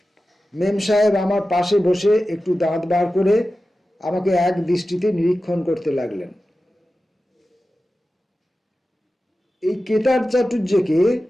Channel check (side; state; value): both; normal; correlation 0.94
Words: মেম সাহেব আমার পাশে বসে একটু দাঁত বার করে আমাকে এক দৃষ্টিতে নিরীক্ষণ করতে লাগলেন। এই কেতার চাটুর্যকে